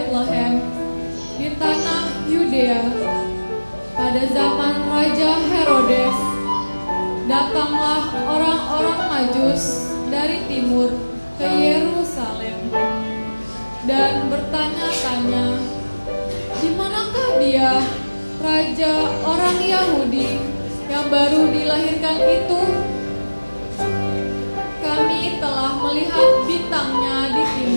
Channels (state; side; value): inverted; both; correlation -1.00